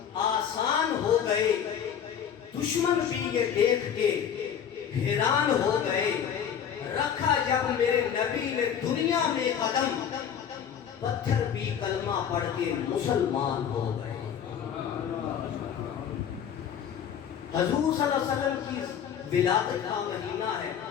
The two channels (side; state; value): right; quieter; 8.4 dB